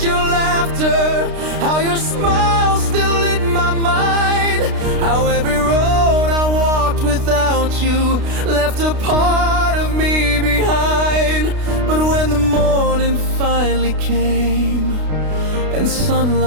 your laughter, how your smile still lit my mind, how every road I walked without you left a part of me behind. But when the morning finally came and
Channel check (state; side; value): late; left; 32 ms